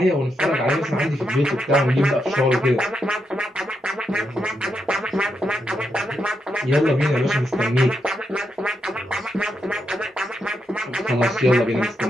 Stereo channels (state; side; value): normal; both; correlation 0.82